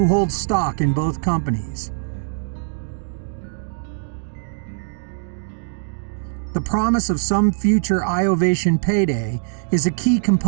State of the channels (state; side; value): silent; left; digital silence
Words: hold stock in both companies. The promise of some future iOvation payday is a key